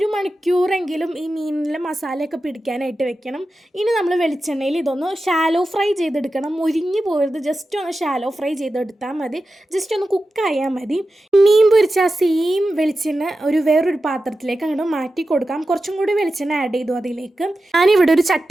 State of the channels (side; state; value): both; normal; correlation 0.92